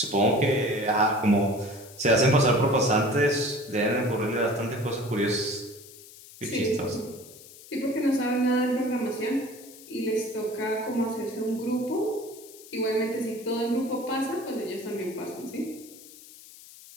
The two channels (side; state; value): left; noise; hiss, 19 dB below the sound